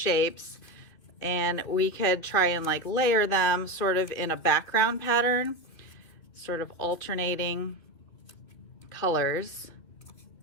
and we could try and like layer them sort of in a background pattern, sort of alternating colors.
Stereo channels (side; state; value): right; late; 2.7 ms